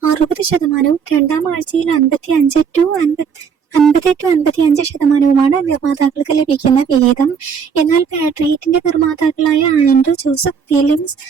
60%, രണ്ടാം ആഴ്ചയിൽ 50-55% നിർമ്മാതാക്കൾക്ക് ലഭിക്കുന്ന വിഹിതം. എന്നാൽ പാട്രിയറ്റിന്റെ നിർമ്മാതാക്കളായ ആൻഡ്രൂ ജോസഫ് ഫിലിംസ്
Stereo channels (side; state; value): left; quieter; 6.6 dB